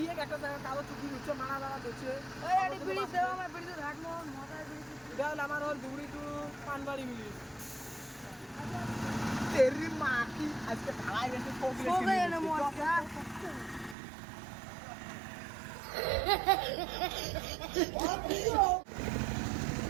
এই একটা জায়গা কালো চুকি উচ্চ মারা মারা দিচ্ছে ওই আরে বিড়ি দেও আমি বিড়ি তো রাখবো মাথায় বিড়ি এটা হলো আমার হল দুবড়ি টু পানবাড়ি মিলি তেরি মাটি আজকে ঢালাই গেছে সো গয়ে না মজা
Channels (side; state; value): left; drops out; at 14.0 s